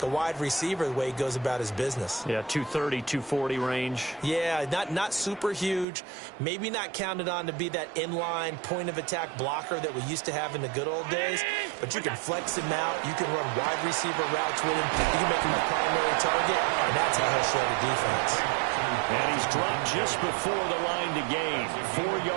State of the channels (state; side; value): drops out; left; at 5.9 s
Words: a wide receiver the way he goes about his business. Yeah, 230, 240 range. Yeah, not super huge. Maybe not counted on to be that inline point-of-attack blocker that we used to have in the good old days, but you can flex him out. You can run wide receiver routes with him. You can make him a primary target, and that's how he'll shred a defense. And he's dropped just before the line to gain.